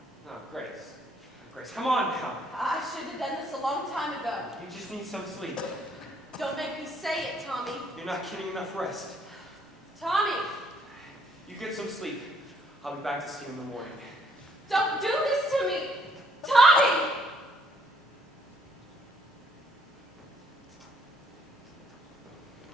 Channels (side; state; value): both; normal; correlation 0.67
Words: Grace, come on now. I should have done this a long time ago. You just need some sleep. Don't make me say it, Tommy. You're not getting enough rest. Tommy, You get some sleep. I'll be back to see you in the morning. don't do this to me. Tommy!